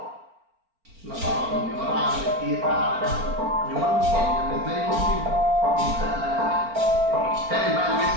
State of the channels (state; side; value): late; left; 4.4 ms